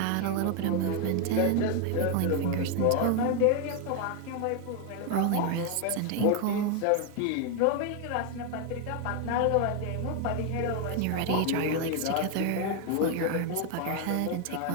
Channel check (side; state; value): both; different; correlation 0.01